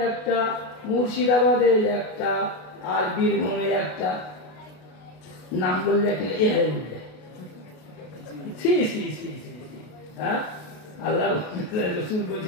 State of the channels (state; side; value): late; right; 33 ms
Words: 1টা, মুর্শিদাবাদে 1টা, আর বীরভূমে 1টা। নাম বললে এ হয়ে বললে হ্যাঁ, আল্লাহ রাসূল